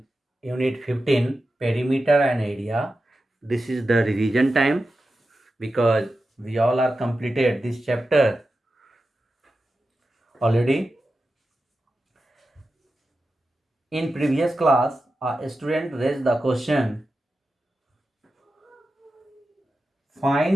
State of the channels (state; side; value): normal; both; correlation 0.92